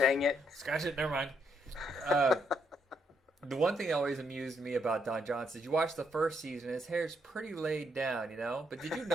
it. Scratch it. Never mind. The one thing that always amused me about Don Johnson is you watch the first season, his hair's pretty laid down, you know? But did you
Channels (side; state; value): both; normal; correlation 0.75